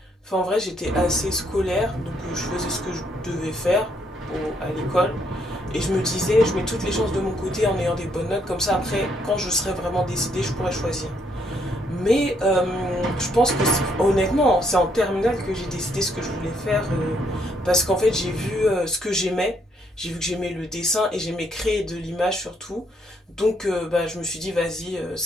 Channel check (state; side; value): normal; both; correlation 0.72